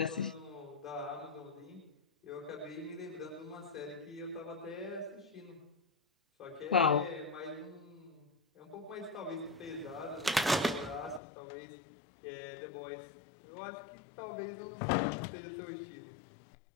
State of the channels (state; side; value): drops out; right; at 11.2 s